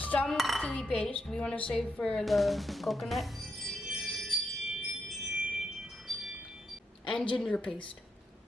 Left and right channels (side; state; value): both; normal; correlation 0.82